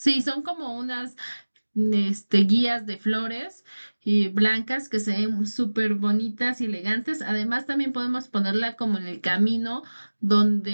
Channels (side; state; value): both; inverted; correlation -1.00